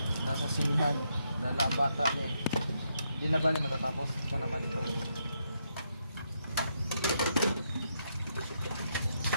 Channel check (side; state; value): both; inverted; correlation -0.79